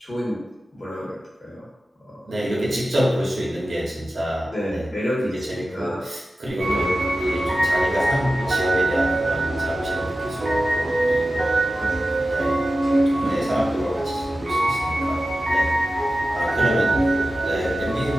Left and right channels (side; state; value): both; normal; correlation 0.94